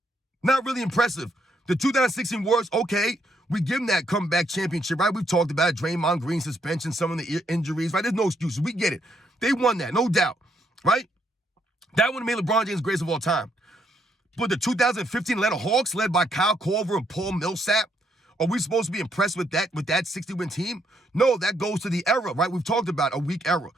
Not really impressive. The 2016 Warriors, okay, we give them that comeback championship, right? We've talked about it. Draymond Green suspension, some of the injuries, right? There's no excuses. We get it. They won that, no doubt, right? That would have made LeBron James greatest of all time. But the 2015 Atlanta Hawks, led by Kyle Korver and Paul Millsap, are we supposed to be impressed with that 60-win team? No, that goes to the era, right? We've talked about a weak era,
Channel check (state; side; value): normal; both; correlation 0.74